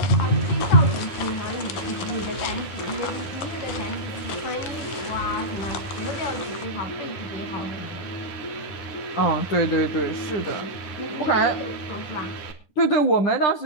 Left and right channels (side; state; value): right; late; 10 ms